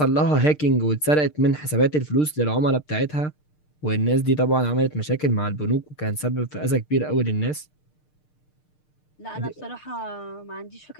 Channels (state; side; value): late; right; 6.6 ms